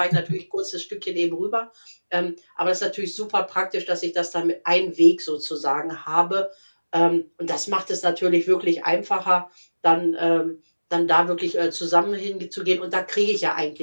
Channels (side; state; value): both; inverted; correlation -1.00